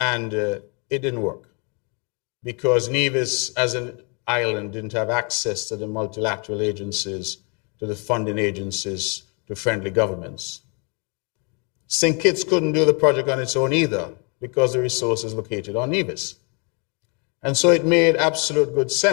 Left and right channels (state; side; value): quieter; right; 34.8 dB